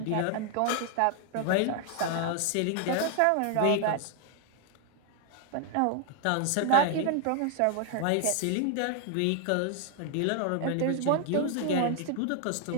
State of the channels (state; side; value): different; both; correlation 0.00